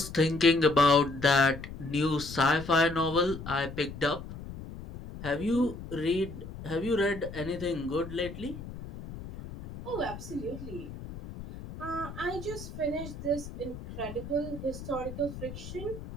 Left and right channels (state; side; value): noise; left; rumble, 11 dB below the sound